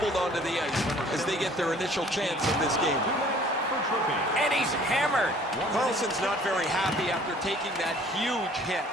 onto the ice as they get their initial chance in this game. And he's hammered. Carlson's not very happy after taking that huge hit.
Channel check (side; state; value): both; normal; correlation 0.54